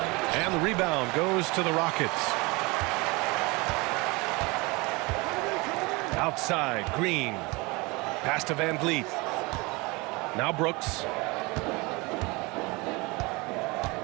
And the rebound goes to the Rockets. Outside, Green. Pass to Van Vliet. Now Brooks.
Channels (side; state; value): left; quieter; 25.4 dB